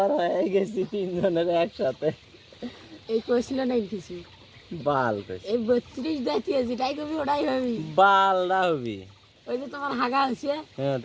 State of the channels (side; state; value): both; identical; correlation 1.00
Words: হয়ে গেছি তিনজনের একসাথে। এই কইছিল না কিছু বাল কইছি এই 32 দাঁতিয়ে যেটাই কবি ওটাই হবি। বাল না হবি। ওই যে তোমার হাগা হয়েছে হ্যাঁ